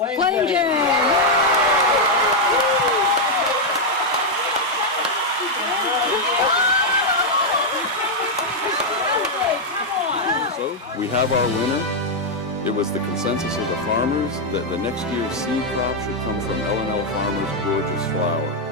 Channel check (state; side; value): normal; both; correlation -0.01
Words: Jane. So we have our winner. It was the consensus of the farmers that the next year's seed crop should come from L&L Farmers' gorgeous flower.